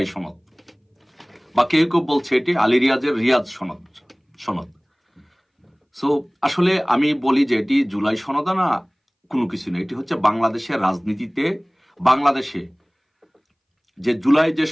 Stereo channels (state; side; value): identical; both; correlation 1.00